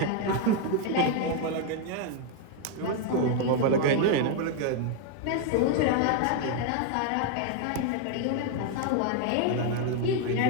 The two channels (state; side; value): different; both; correlation 0.00